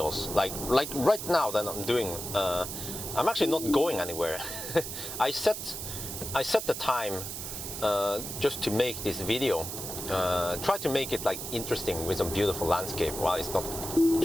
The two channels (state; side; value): noise; right; hiss, 7 dB below the sound